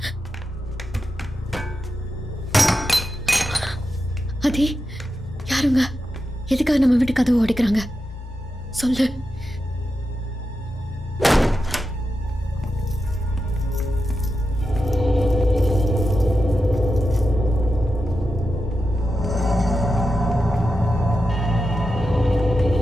அதே யாருங்க? எதுக்காக நம்ம வீட்டு கதவு உடைக்கிறாங்க? சொல்லு.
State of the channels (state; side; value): normal; both; correlation 0.90